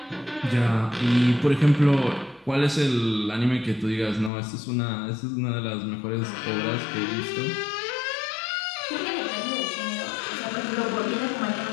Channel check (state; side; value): drops out; right; at 4.3 s